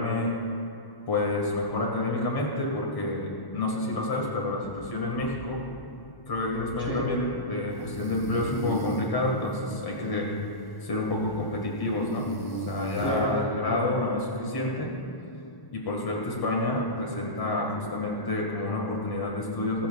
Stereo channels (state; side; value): late; right; 1.1 ms